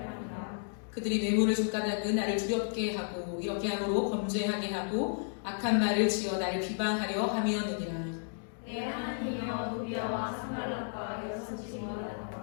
그들이 뇌물을 줬다는 나를 두렵게 하고 이렇게 함으로 범죄하게 하고 악한 말을 지어 나를 비방하려 함이었느니라. 내 하나님이여 도비야와 산발랏과 여섯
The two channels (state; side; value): silent; right; digital silence